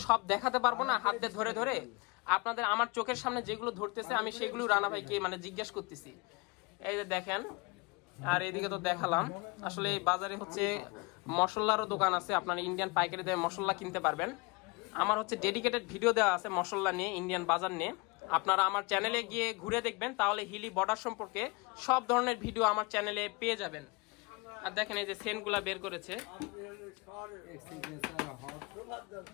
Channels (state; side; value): quieter; right; 27.4 dB